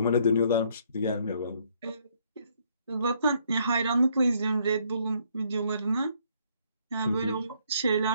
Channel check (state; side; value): inverted; both; correlation -0.68